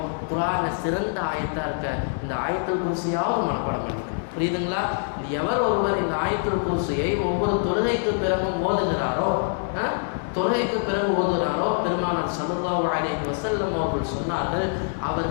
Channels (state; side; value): silent; right; digital silence